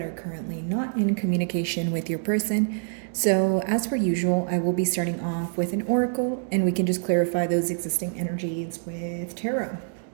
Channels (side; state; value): left; silent; digital silence